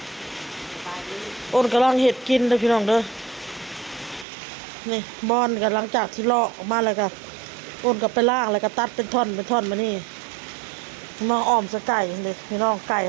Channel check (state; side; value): drops out; left; at 4.2 s